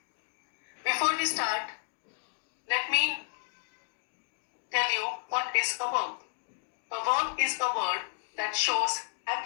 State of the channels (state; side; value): silent; right; digital silence